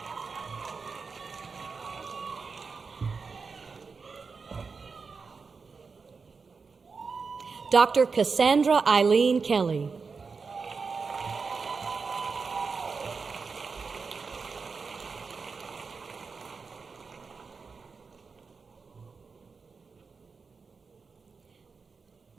Dr. Cassandra Eileen Kelly.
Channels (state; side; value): quieter; left; 4.9 dB